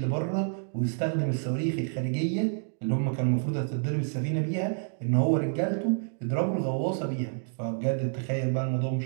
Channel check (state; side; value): silent; left; digital silence